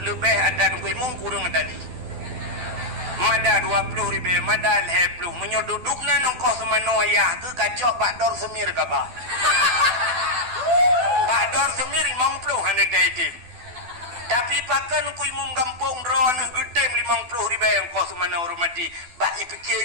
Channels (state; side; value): late; left; 12 ms